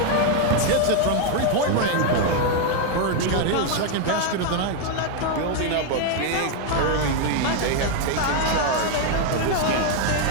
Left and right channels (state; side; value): different; both; correlation 0.01